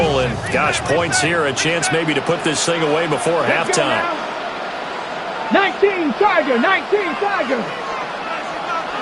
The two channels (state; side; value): identical; both; correlation 1.00